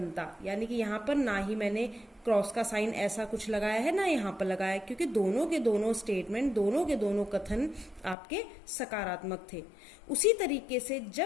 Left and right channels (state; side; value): drops out; right; at 8.2 s